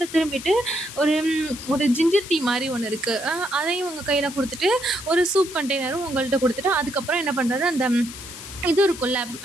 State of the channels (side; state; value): left; noise; hiss, 13 dB below the sound